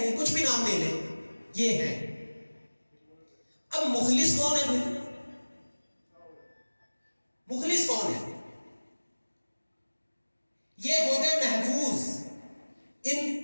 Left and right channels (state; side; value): inverted; both; correlation -1.00